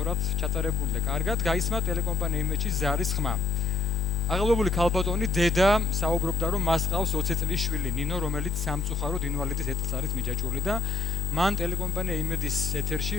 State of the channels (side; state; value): right; quieter; 4.4 dB